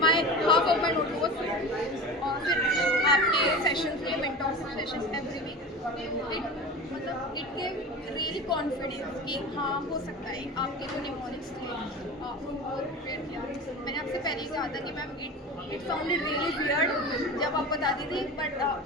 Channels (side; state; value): both; normal; correlation 0.32